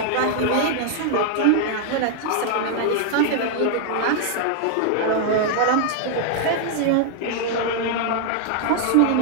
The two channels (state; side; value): different; both; correlation -0.01